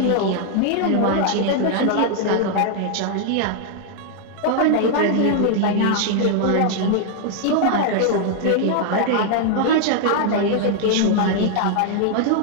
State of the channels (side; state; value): both; different; correlation 0.00